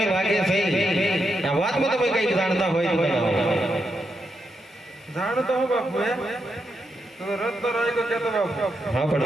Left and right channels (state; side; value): normal; both; correlation 0.83